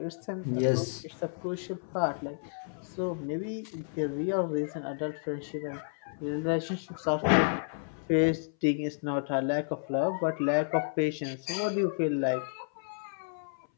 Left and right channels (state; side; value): silent; right; 57 dB below the other